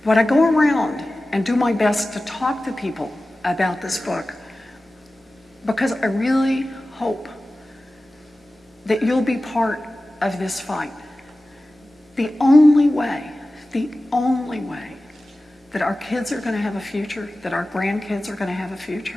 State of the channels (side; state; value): both; normal; correlation 0.96